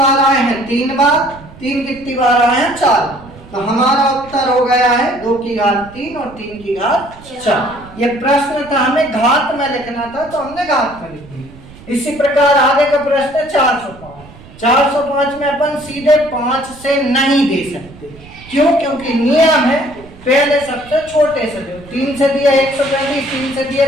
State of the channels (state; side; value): noise; right; rumble, 20 dB below the sound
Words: आए हैं, 3 बार, 3 कितनी बार आए हैं, 4। तो हमारा उत्तर हो गया है 2 की घात 3 और 3 की घात 4। ये प्रश्न था, हमें घात में लिखना था तो हमने घात में लिख दिया। इसी प्रकार आगे का प्रश्न 405। 405 में अपन सीधे 5 से नहीं दे सकते, क्यों, क्योंकि नियम है पहले सबसे छोटे से जो 3 से दिया 135, 3 से दिया